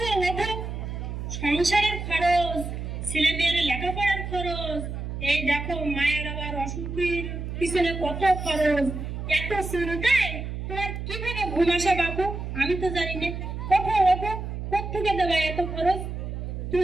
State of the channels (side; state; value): right; noise; hum, 6 dB below the sound